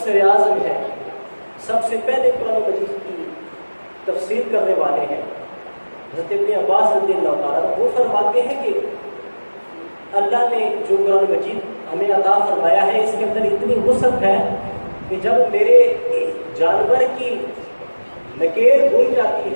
اعظم ہے، سب سے پہلے قرآن مجید کی تفسیر کرنے والے ہیں، حضرت ابن عباس رضی اللہ تعالیٰ، وہ فرماتے ہیں کہ اللہ نے جو قرآن مجید ہمیں عطا فرمایا ہے اس کے اندر اتنی وسعت ہے کہ جب میرے جانور کی نکیل بن جاتی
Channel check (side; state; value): both; inverted; correlation -1.00